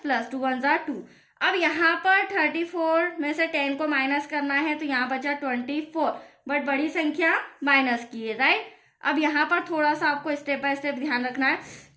प्लस 2 1 2। अब यहाँ पर 34 में से 10 को माइनस करना है तो यहाँ बचा 24, बट बड़ी संख्या माइनस की है, राइट। अब यहाँ पर थोड़ा सा आपको स्टेप बाय स्टेप ध्यान रखना है।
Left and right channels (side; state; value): both; identical; correlation 1.00